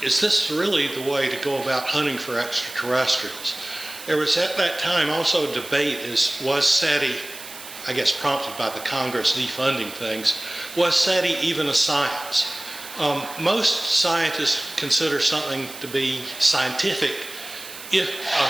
this really the way to go about hunting for extraterrestrials? There was at that time also a debate, was SETI, I guess prompted by the Congress defunding things, was SETI even a science? Most scientists consider something to be scientific, if a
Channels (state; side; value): noise; right; hiss, 14 dB below the sound